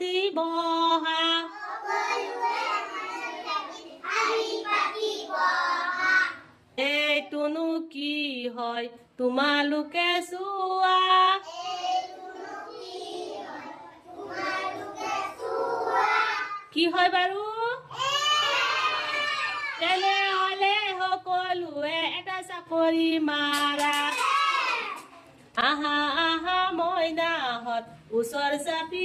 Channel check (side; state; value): both; identical; correlation 1.00